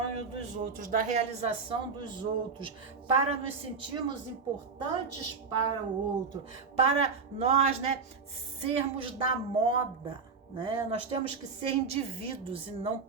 dos outros, da realização dos outros, para nos sentirmos importantes para o outro, para nós, né, sermos da moda. Né? Nós temos que ser indivíduos e não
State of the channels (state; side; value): quieter; left; 5.0 dB